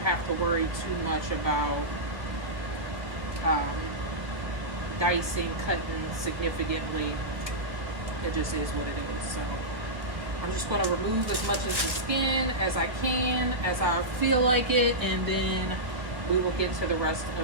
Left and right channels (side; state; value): left; late; 1.2 ms